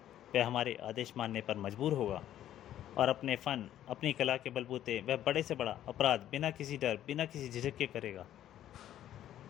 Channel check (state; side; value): quieter; right; 11.9 dB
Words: वह हमारे आदेश मानने पर मजबूर होगा और अपने फन, अपनी कला के बलबूते वह बड़े से बड़ा अपराध बिना किसी डर, बिना किसी झिझक के करेगा।